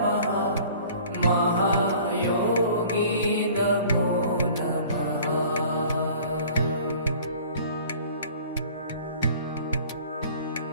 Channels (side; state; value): both; inverted; correlation -0.48